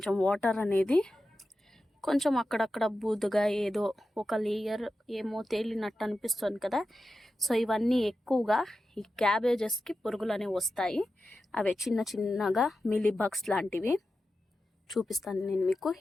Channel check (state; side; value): normal; both; correlation 0.92